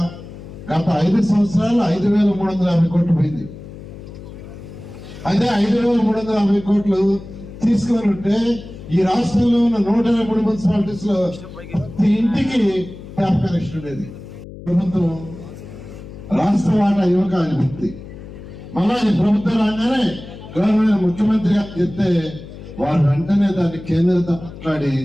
గత 5 సంవత్సరాలు 5,350 కోట్లు పోయింది. అదే 5,350 కోట్లు తీసుకొని ఉంటే ఈ రాష్ట్రంలో ఉన్న 123 మున్సిపాలిటీస్ లో ప్రతి ఇంటికి ట్యాప్ కనెక్షన్ ఉండేది. ప్రభుత్వం రాష్ట్ర వాటా యువక అనిపిస్తుంది. మళ్ళా ఈ ప్రభుత్వం రాగానే గవర్నర్ ముఖ్యమంత్రి గారు చెప్తే వారు వెంటనే దాన్ని కేంద్రంతో మాట్లాడి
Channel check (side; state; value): left; noise; hum, 14 dB below the sound